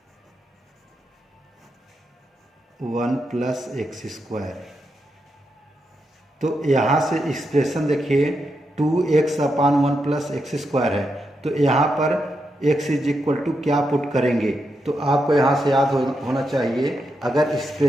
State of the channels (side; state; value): both; normal; correlation 0.84